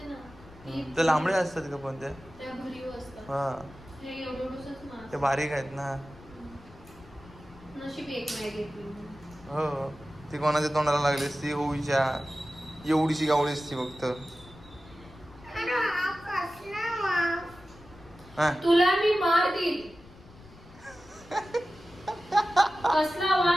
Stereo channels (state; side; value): noise; left; rumble, 21 dB below the sound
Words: ना ती, ते लांबडे असतात का पण ते? त्या भरीव असतात. हा हे एवढंच मास. ते बारीक आहेत ना. नशीब एक नाही घेतली. हो ती कोणाच्या तोंडाला लागली असती होईच्या एवढीशी गावळी असती फक्त. अरे हा कसला वास. हा तुला मी मार देईल. कसला